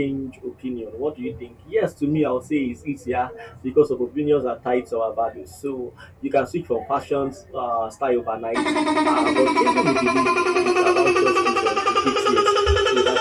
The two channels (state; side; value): identical; both; correlation 1.00